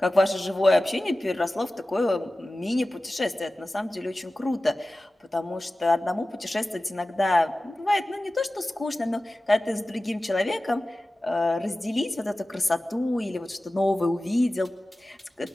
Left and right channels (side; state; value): both; normal; correlation 0.96